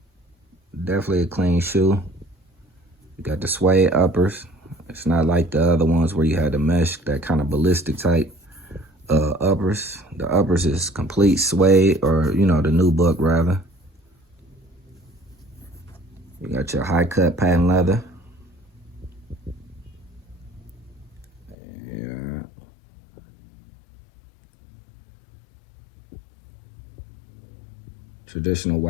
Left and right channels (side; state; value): right; drops out; at 21.6 s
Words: Definitely a clean shoe. You got the suede uppers. It's not like the other ones where you had the mesh, that kind of ballistic type uppers. The uppers is complete suede, or you know, the new buck rather. You got your high cut patent leather. Yeah. Traditional